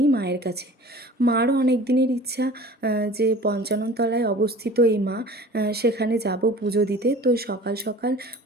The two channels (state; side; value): normal; both; correlation 0.43